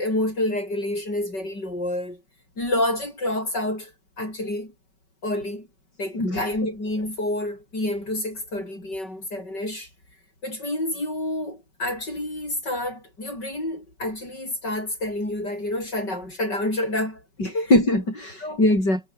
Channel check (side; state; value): right; late; 5.3 ms